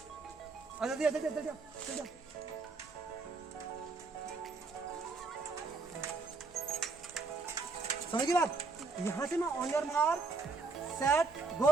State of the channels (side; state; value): left; quieter; 4.1 dB